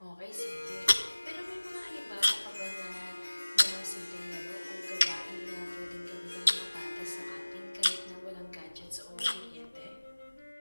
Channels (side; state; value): both; inverted; correlation -1.00